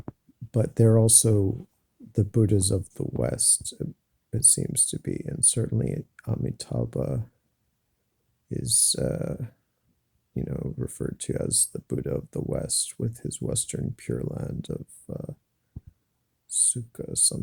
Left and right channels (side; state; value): both; identical; correlation 1.00